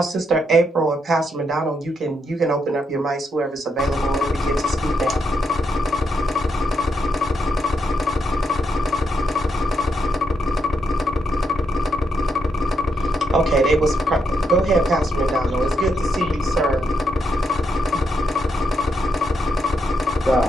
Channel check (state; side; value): normal; both; correlation 0.80